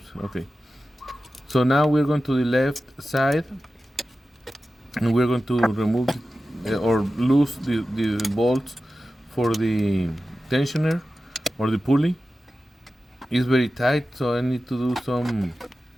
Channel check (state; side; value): normal; both; correlation 0.94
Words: Okay. So now we're going to the left side, and we're going to remove or loose the bolts for the tensioner or the pulley. It's very tight, so I need to do some